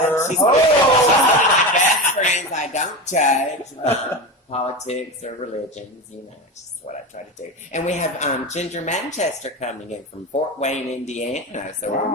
She's one of my best friends. I don't judge politics or religions. It's just what I try to do. And we have Ginger Manchester coming in from Fort Wayne, Indiana. So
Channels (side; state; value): both; normal; correlation 0.22